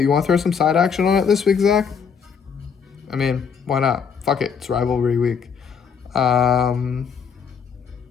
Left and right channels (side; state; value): right; quieter; 6.5 dB